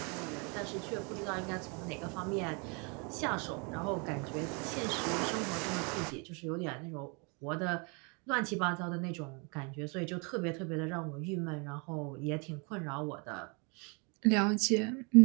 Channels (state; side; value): quieter; left; 32.8 dB